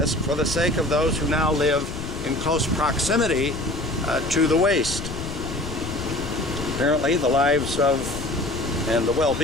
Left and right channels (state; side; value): noise; left; rumble, 9 dB below the sound